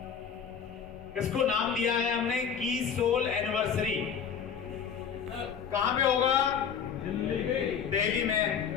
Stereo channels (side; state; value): right; quieter; 7.3 dB